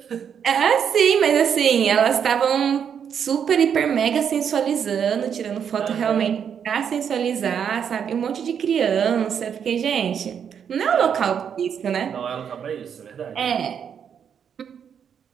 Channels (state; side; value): quieter; left; 7.8 dB